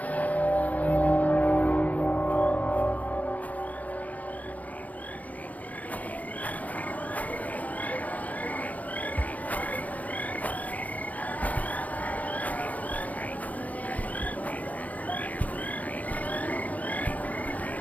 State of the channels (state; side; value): late; right; 0.075 ms